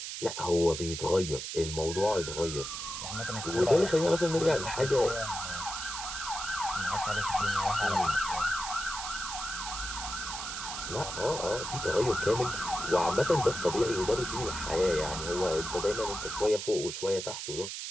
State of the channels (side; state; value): right; noise; hiss, 6 dB below the sound